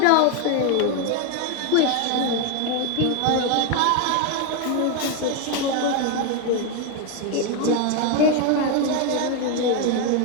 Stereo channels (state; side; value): different; both; correlation 0.01